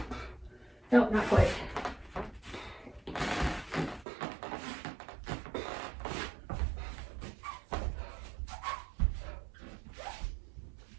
No, not quite.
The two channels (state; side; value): drops out; left; at 4.0 s